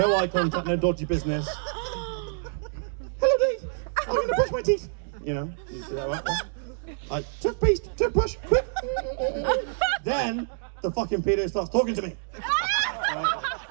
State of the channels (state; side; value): silent; left; digital silence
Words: eye contact, no dodgy business. Hello, Dave. I'm gonna brush my teeth. You know, you see that right? Toothpaste, toothbrush, quick. Then the fucking pedo starts talking to me.